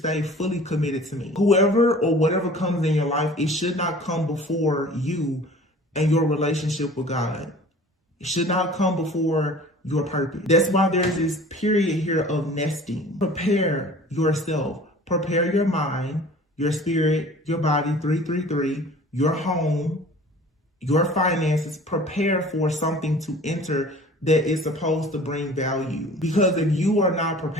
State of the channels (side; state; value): both; normal; correlation 0.45